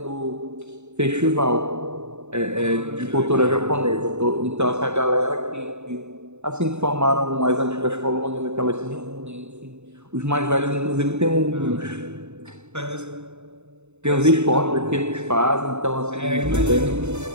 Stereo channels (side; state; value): left; late; 0.82 ms